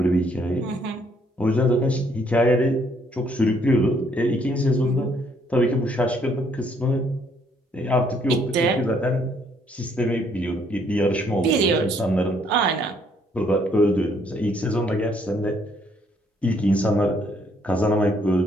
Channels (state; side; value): normal; both; correlation 0.67